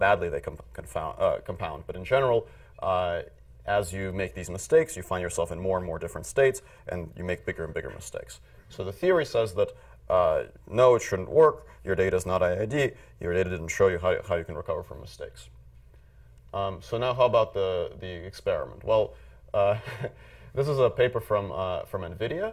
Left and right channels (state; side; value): identical; both; correlation 1.00